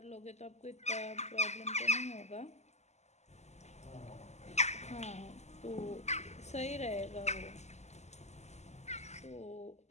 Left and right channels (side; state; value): right; late; 0.33 ms